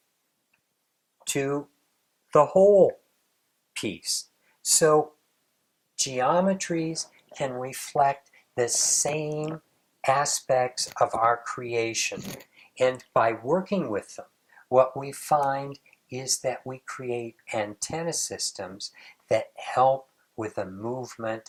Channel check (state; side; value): identical; both; correlation 1.00